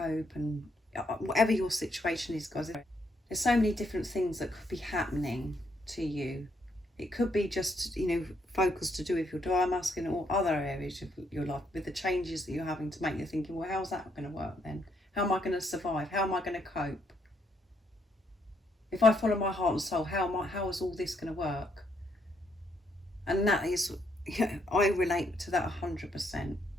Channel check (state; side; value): normal; both; correlation 0.74